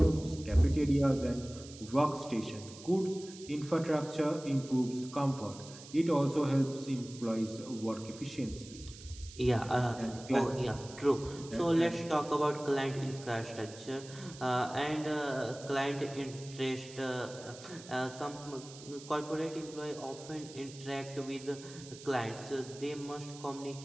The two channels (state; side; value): noise; right; hiss, 17 dB below the sound